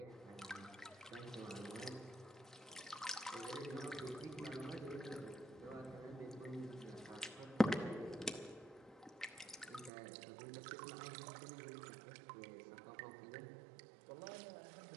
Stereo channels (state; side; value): drops out; left; at 9.9 s